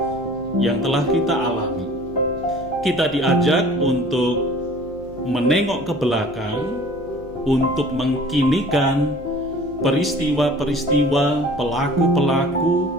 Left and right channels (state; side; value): noise; right; hum, 19 dB below the sound